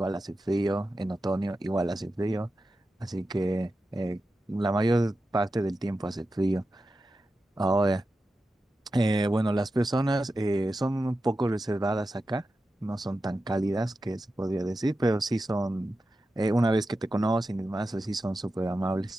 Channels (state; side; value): normal; both; correlation 0.91